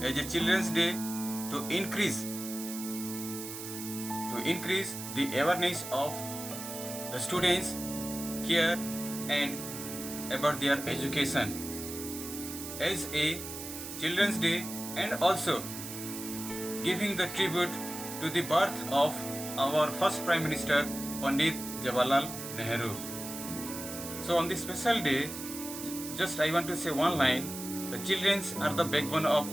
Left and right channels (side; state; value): right; noise; hiss, 9 dB below the sound